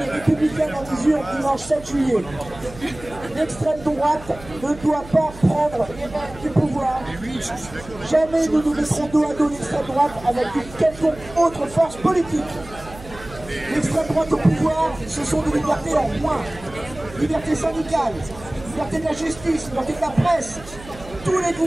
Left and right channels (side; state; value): right; noise; hum, 17 dB below the sound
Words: et républicaine en mesure dimanche 7 juillet. L'extrême droite ne doit pas prendre les rênes du pouvoir. Jamais nous nous mettrons dos à dos l'extrême droite avec une quelconque autre force politique. L'extrême droite au pouvoir, ce sont des libertés en moins. Liberté syndicale, liberté de la justice, liberté de la presse. Tous les